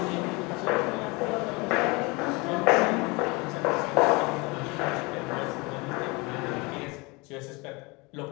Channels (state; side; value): quieter; right; 26.6 dB